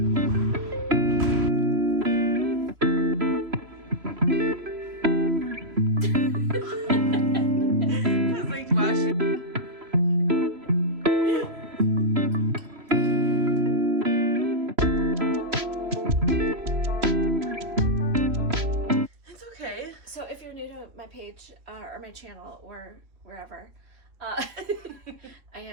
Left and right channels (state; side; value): late; left; 3.0 ms